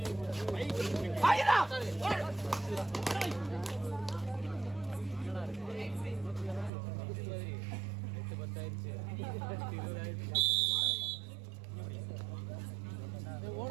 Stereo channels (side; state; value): left; drops out; at 6.7 s